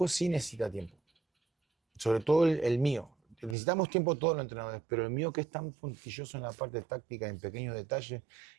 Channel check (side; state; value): left; drops out; at 3.6 s